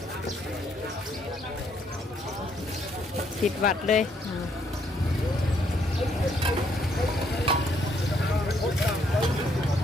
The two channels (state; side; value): normal; both; correlation 0.70